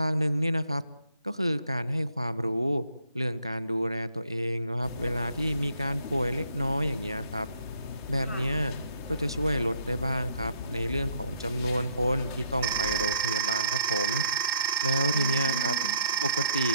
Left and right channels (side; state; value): both; inverted; correlation -0.67